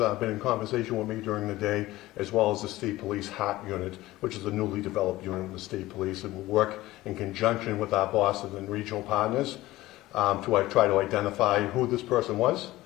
been in conversation with me during the day, as well as the state police HART unit, which is a newly developed unit of the state police, and will work in conjunction with our bosses and regional partners to try to identify who this person was.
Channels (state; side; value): quieter; right; 17.4 dB